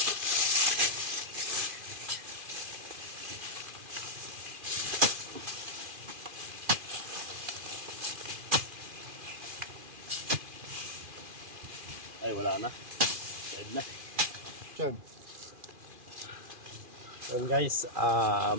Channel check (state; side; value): late; left; 2.4 ms